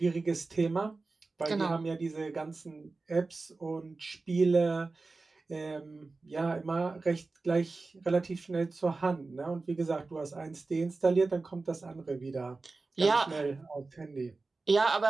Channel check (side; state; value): left; quieter; 3.7 dB